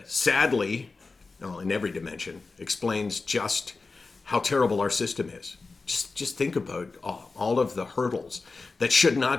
sadly, in every dimension, explains just how terrible our system is. Just think about all of the hurdles that should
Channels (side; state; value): right; quieter; 4.0 dB